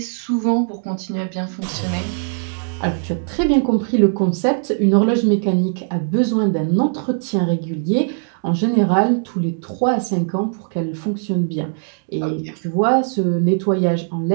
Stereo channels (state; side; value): silent; left; digital silence